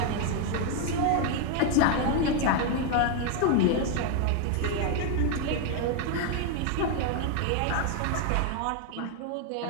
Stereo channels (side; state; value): both; different; correlation 0.01